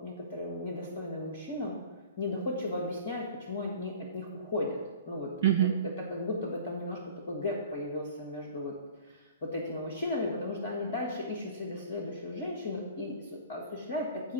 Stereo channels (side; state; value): both; inverted; correlation -0.44